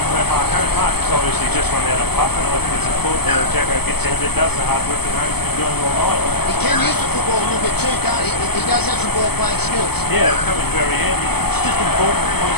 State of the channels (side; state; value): right; late; 0.97 ms